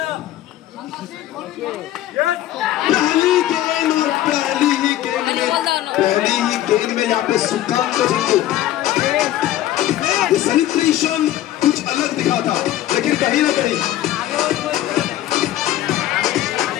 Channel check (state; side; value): quieter; right; 13.5 dB